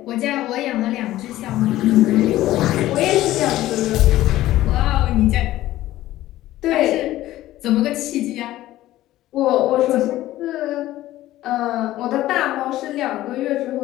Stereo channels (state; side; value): quieter; right; 15.1 dB